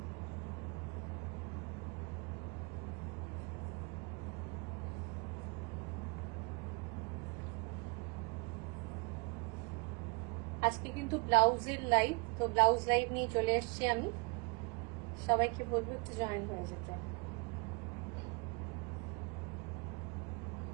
আজকে কিন্তু ব্লাউজের লাইভ, তো ব্লাউজ লাইভ নিয়ে চলে এসেছি আমি। সবাইকে বলবো একটু জয়েন হয়ে যেতে।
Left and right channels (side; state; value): left; quieter; 31.4 dB